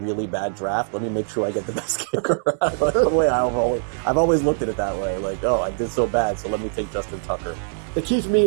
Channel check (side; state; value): left; silent; digital silence